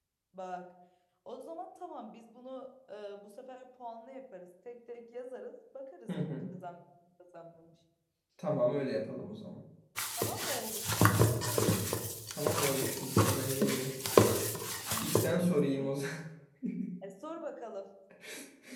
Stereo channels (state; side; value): identical; both; correlation 1.00